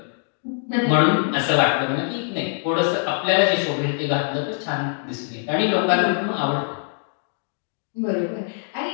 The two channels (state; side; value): silent; right; 63 dB below the other